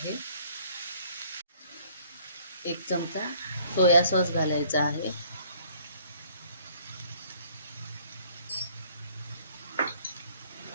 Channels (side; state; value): both; inverted; correlation -0.58